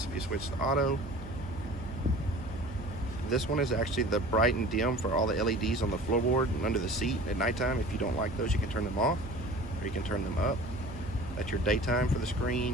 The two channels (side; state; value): right; noise; hum, 14 dB below the sound